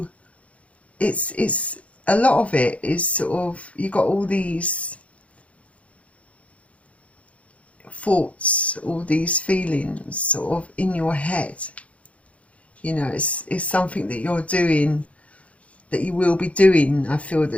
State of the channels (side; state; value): right; late; 0.064 ms